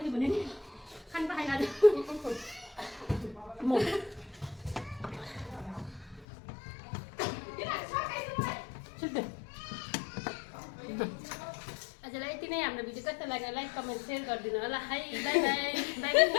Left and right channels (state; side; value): drops out; right; at 6.2 s